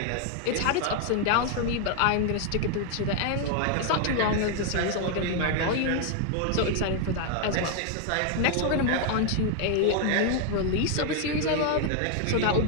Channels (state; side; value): different; both; correlation 0.00